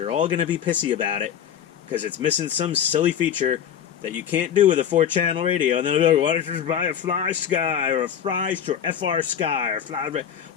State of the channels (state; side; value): quieter; right; 8.9 dB